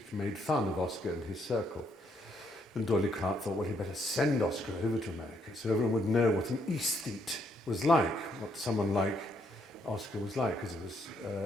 made fun of Oscar and his circle. And Doyley Carte thought, well, he'd better send Oscar over to America so everyone would know what an aesthete was like, what someone like Oscar was like, because it was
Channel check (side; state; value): both; normal; correlation 0.73